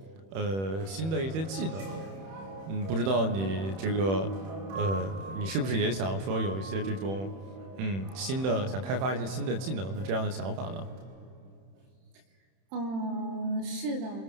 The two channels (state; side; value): late; left; 31 ms